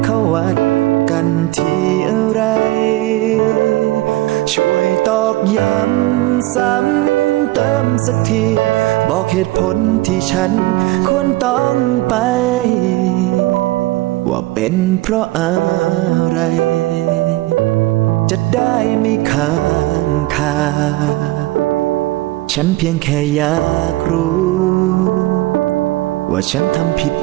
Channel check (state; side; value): quieter; left; 18.7 dB